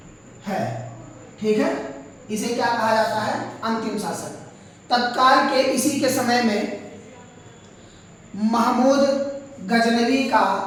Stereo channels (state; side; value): identical; both; correlation 1.00